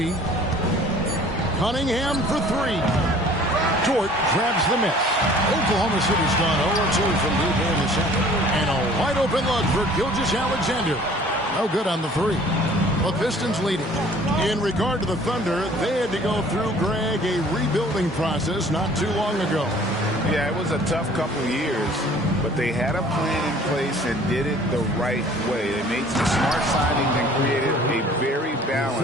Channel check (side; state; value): both; normal; correlation 0.52